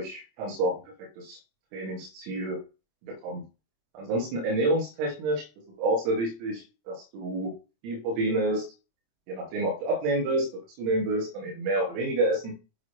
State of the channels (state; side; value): late; left; 26 ms